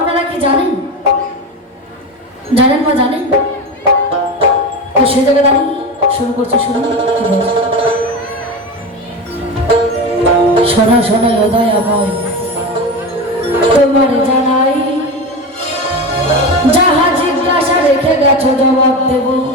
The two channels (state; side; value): normal; both; correlation 0.23